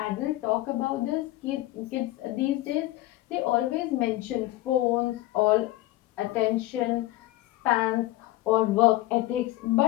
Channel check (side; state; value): right; quieter; 17.1 dB